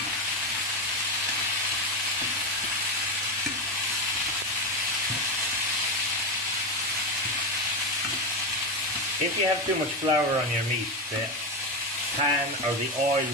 If you have too much flour on your meat, the pan or the oil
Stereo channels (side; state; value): both; normal; correlation 0.14